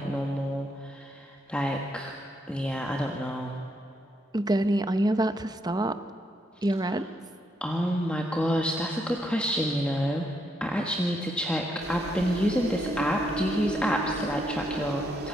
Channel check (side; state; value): both; normal; correlation 0.77